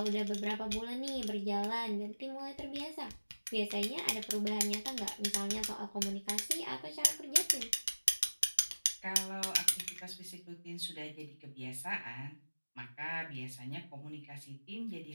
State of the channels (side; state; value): both; inverted; correlation -1.00